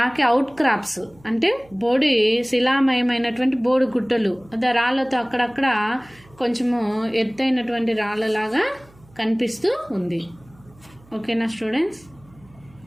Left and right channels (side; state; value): right; noise; hum, 27 dB below the sound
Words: అవుట్ క్రాప్స్ అంటే బోడి శిలామయమైనటువంటి బోడి గుట్టలు, అదే రాళ్ళతో అక్కడక్కడ కొంచెము ఎత్తైనటువంటి రాళ్ళలాగా కనిపిస్తూ ఉంది. ఓకేనా students.